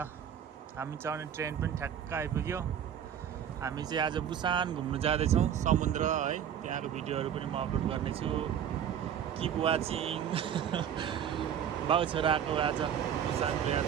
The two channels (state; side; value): quieter; left; 9.1 dB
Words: हामी चढ्ने ट्रेन पनि ठ्याक्क आइपुग्यो। हामी चाहिँ आज बुसान घुम्नु जाँदैछौँ समुद्र है। त्यहाँको भिडियोहरू पनि म अपलोड गर्नेछु। Keep watching. बाउ छोराको आज बुसानको